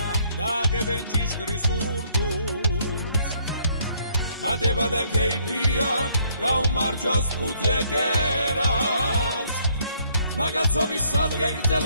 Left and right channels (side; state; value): both; inverted; correlation -0.67